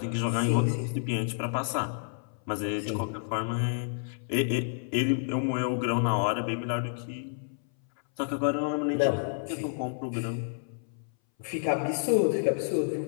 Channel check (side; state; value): right; silent; 58 dB below the other